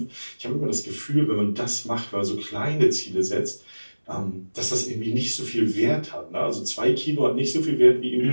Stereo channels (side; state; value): both; inverted; correlation -1.00